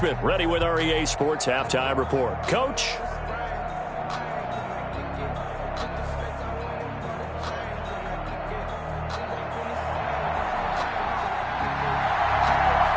ready with our EA Sports Halftime Report. Coach?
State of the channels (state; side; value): identical; both; correlation 1.00